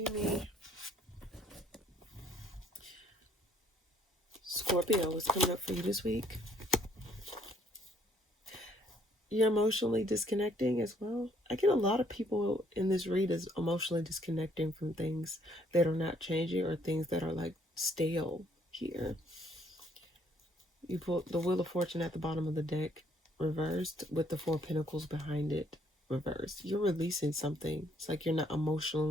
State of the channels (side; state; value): both; normal; correlation 0.66